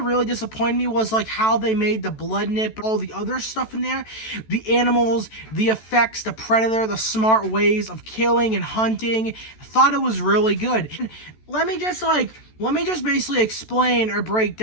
really disappointed me was like how they made the blood nip, all the other stuff in there, the animals, the effects, the Predator, the smart ways of killing and hunting. I thought it was really good. And let me just basically explain or break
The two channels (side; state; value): right; late; 14 ms